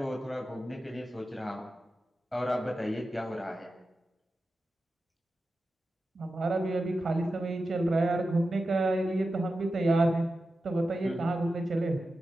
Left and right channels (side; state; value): both; normal; correlation 0.92